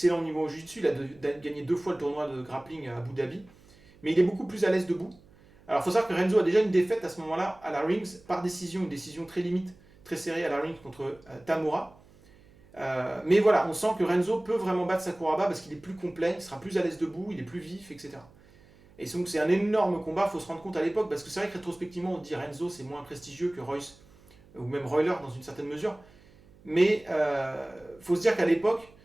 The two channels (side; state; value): right; noise; hum, 26 dB below the sound